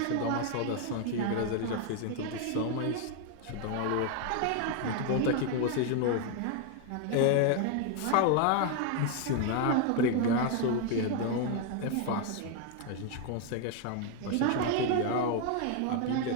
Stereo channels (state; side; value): different; both; correlation 0.01